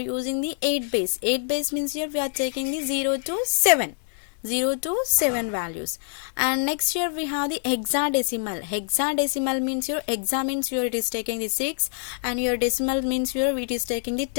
the 8 base. 8 base means here we are taking the 0 to 7. 0 to 7 values. And next here we have the hexadecimal. Hexadecimal means your hexa means here it is taking the 6 and your decimal means here it is taking the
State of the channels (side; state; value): right; silent; digital silence